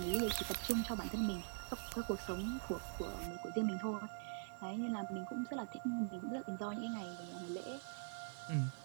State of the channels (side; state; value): left; silent; digital silence